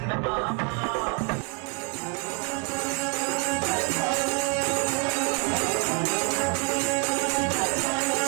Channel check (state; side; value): quieter; left; 36.8 dB